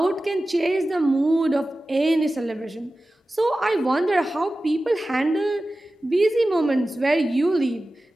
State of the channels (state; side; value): normal; both; correlation 0.95